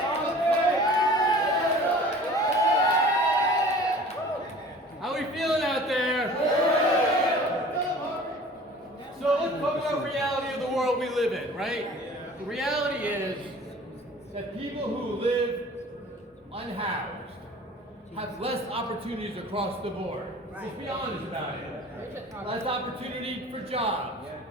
How we feeling out there? So let's talk about reality of the world we live in, right? The reality is that people who live unhoused have less opportunities across the board. Let's be honest about it. Less opportunity for jobs,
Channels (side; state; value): both; normal; correlation 0.45